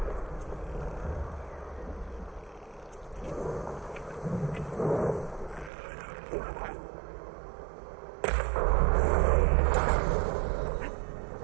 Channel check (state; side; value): drops out; left; at 5.7 s